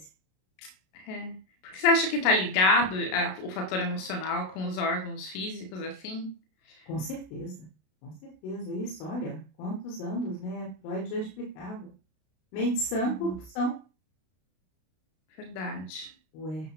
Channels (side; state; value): right; late; 32 ms